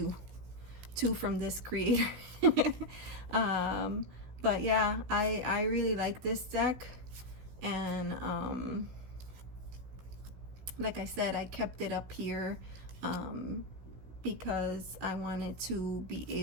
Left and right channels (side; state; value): left; late; 16 ms